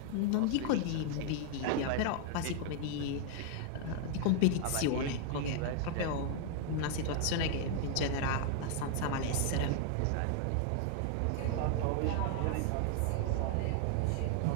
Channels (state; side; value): different; both; correlation 0.00